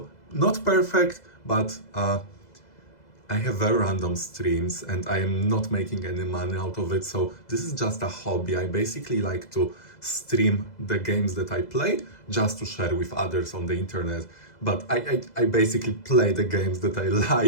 not perfect, but I have very random streams and I am not making any money out of it. So this is just a hobby. I basically like to stream the games that I play just to share with others on the internet. But I basically play the games that I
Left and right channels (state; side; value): late; right; 2.0 ms